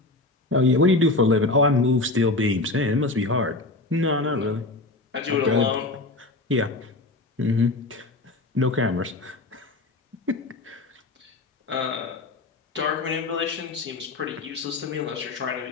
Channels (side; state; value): right; quieter; 3.1 dB